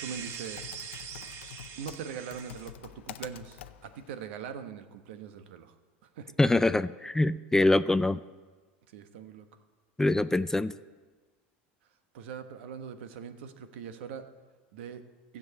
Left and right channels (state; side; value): normal; both; correlation 0.87